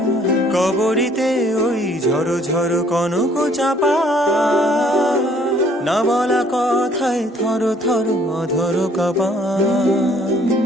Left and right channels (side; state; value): both; normal; correlation 0.61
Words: কবরীতে ওই ঝড়ো ঝড়ো কনক চাপা, না বলা কথায় থর থর অধর কাপা।